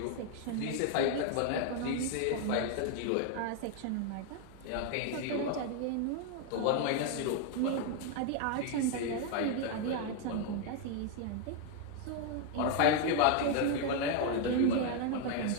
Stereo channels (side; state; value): both; different; correlation 0.00